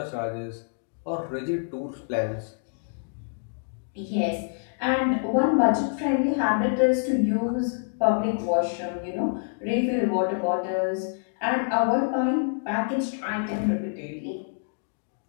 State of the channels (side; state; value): right; silent; digital silence